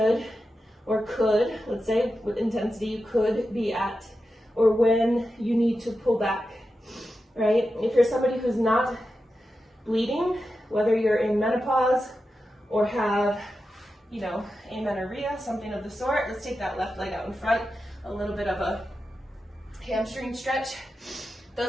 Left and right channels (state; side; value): normal; both; correlation 0.90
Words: or could, let's say, what intensity you could be at, or when you need to pull back, right? If you're somebody who's not bleeding, whether you're in menopause or have, you know, amenorrhea, something of the sort, let's take that left leg out in front, a little bit of a hamstring stretch.